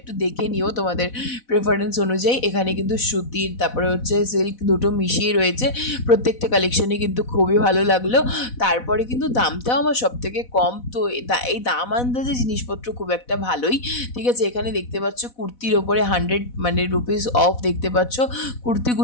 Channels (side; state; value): right; late; 4.1 ms